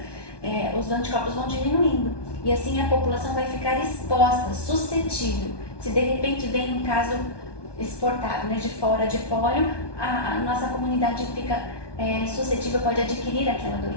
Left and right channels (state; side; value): late; right; 1.2 ms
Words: os anticorpos vão diminuindo e assim a população vai ficar exposta, suscetível. Se de repente vem um caso exportado, de fora de pólio, a nossa comunidade fica suscetível, pode adquirir aquela